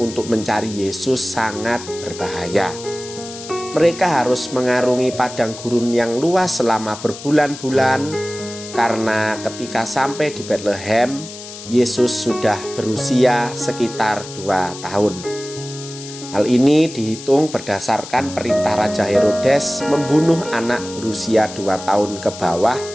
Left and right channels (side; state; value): left; noise; hiss, 13 dB below the sound